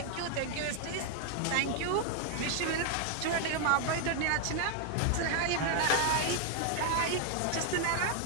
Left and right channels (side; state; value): both; different; correlation 0.00